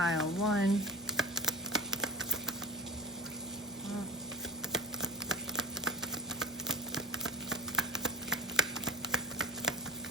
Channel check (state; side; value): normal; both; correlation 0.35